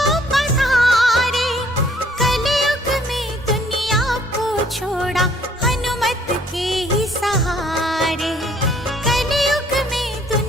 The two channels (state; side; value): normal; both; correlation 0.62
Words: पधारे। कलयुग में दुनिया को छोड़ा हनुमत के ही सहारे, कलयुग में